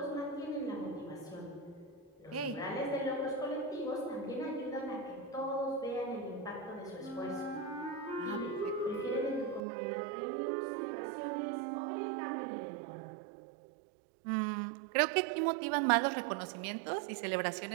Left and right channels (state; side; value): drops out; left; at 9.6 s